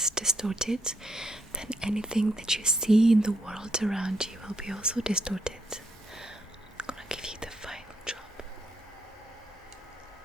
distorted, then anything that you see in the world around you will be also distorted. I'm gonna give you the final drop.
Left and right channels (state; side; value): normal; both; correlation 0.76